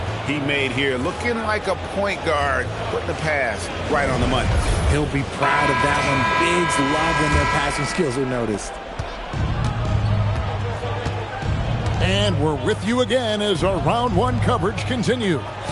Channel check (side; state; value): both; identical; correlation 1.00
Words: he made here? Looking like a point guard, putting the pass right on the money. He'll be proud of that one. Bigs love when their passing skills are noticed. And we're with you again as our round one coverage continues.